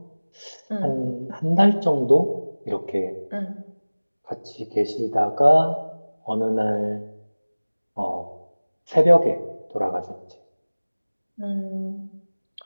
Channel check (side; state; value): both; inverted; correlation -1.00